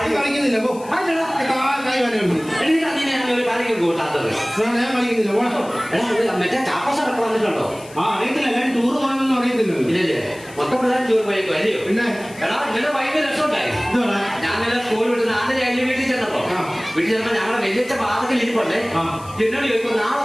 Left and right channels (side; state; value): left; noise; hiss, 21 dB below the sound